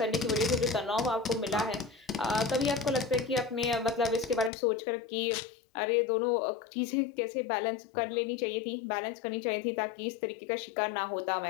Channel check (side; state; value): right; drops out; at 4.5 s